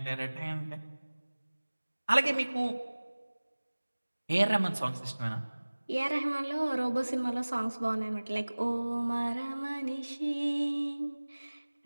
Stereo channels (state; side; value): inverted; both; correlation -1.00